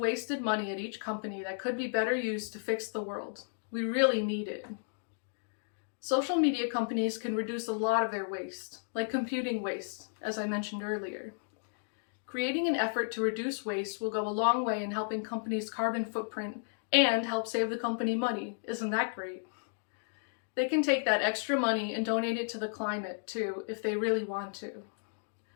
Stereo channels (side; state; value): right; silent; digital silence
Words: money at each company that could be better used to fix the world. We really need it. Social media companies can reduce a lot of their waste, like computing waste, as I mentioned earlier. Creating an effort to reduce waste will go a long way in helping companies' carbon footprint and help save the company money. Isn't that great? They can take that extra money and donate it to the climate too, if they really want to.